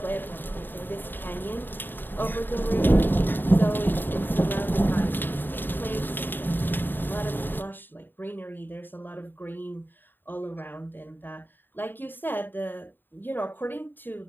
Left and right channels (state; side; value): late; right; 0.093 ms